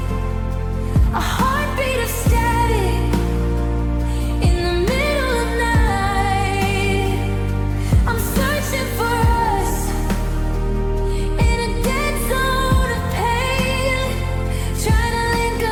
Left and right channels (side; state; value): both; identical; correlation 1.00